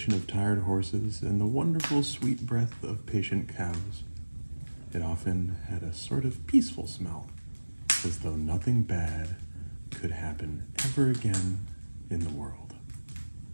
of tired horses and the wonderful sweet breath of patient cows. It often had a sort of peaceful smell, as though nothing bad could happen ever again in the world.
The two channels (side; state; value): both; inverted; correlation -1.00